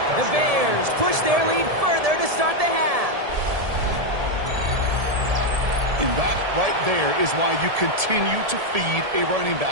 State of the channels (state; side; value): late; left; 1.7 ms